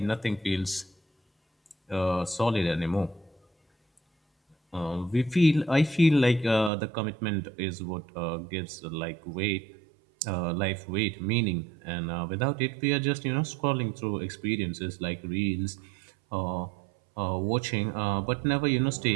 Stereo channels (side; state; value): left; drops out; at 6.7 s